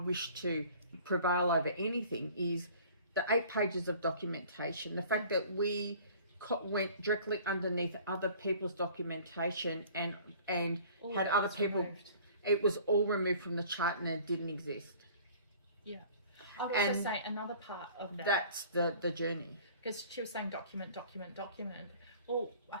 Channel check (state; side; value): inverted; both; correlation -0.49